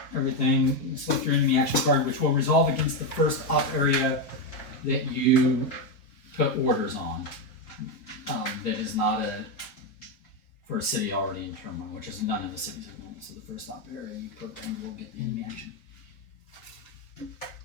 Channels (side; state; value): right; late; 4.0 ms